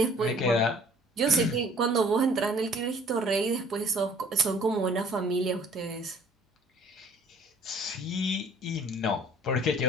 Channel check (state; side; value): normal; both; correlation 0.54